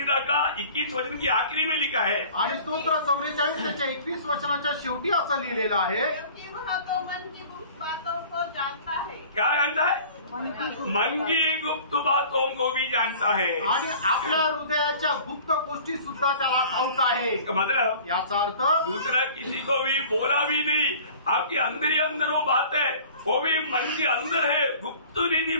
का 21 वचन की आखिरी में लिखा है, आणि स्तोत्र 44 त्याच्या 21 वचनाच्या शेवटी असं लिहिलेलं आहे, क्योंकि वह तो मन की गुप्त बातों को जानता है। क्या जानता है? मन की गुप्त बातों को भी जानता है। आणि आपल्या हृदयाच्या गुप्त गोष्टी सुद्धा त्याला ठाऊक आहे। इसका मतलब याचा अर्थ दूसरा किसी को भी बोला भी नहीं, आपके अंदर ही अंदर वो बात है, वो भी मन के अंदर है, गुप्त निधि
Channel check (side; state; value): both; inverted; correlation -0.46